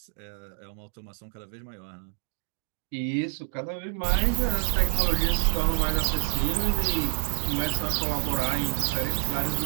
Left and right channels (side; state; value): left; silent; digital silence